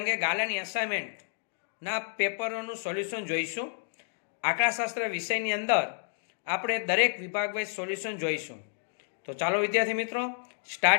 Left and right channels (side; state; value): right; silent; digital silence